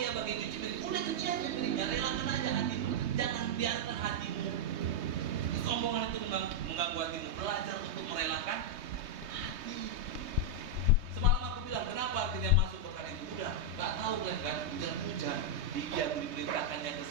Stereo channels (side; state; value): left; late; 3.2 ms